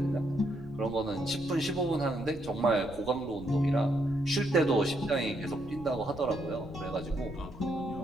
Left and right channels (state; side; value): noise; left; rumble, 16 dB below the sound